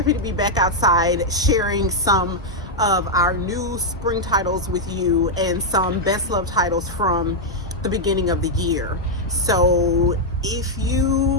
to be back outside sharing some of our new spring titles with you and some best love titles from the beginning of the year. So if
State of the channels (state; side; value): normal; both; correlation -0.02